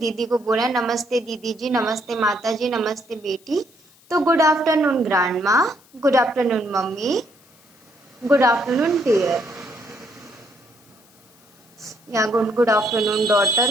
को बोला है नमस्ते दीदी जी, नमस्ते माता जी, नमस्ते बेटी। तो good afternoon grandma, good afternoon mummy, good afternoon dear, या गुड आफ्टरनून डॉटर,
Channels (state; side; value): noise; left; hiss, 29 dB below the sound